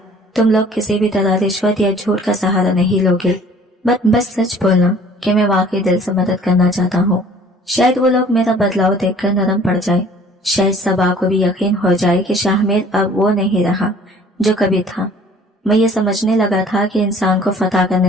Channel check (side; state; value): both; normal; correlation 0.52